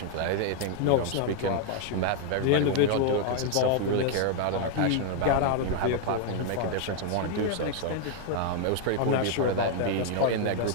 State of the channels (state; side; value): different; both; correlation 0.00